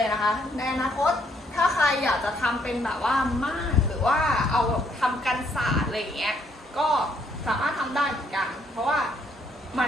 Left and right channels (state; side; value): normal; both; correlation 0.69